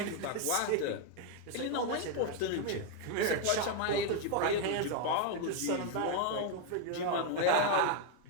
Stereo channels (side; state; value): both; different; correlation 0.01